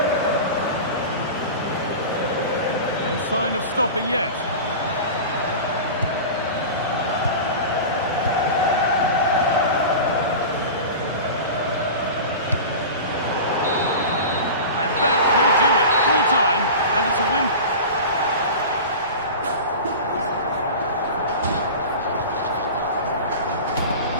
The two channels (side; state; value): both; inverted; correlation -0.31